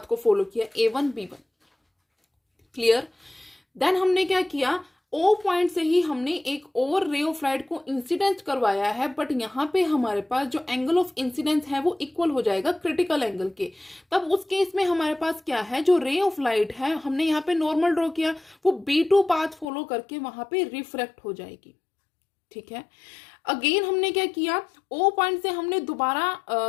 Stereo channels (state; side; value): drops out; right; at 19.7 s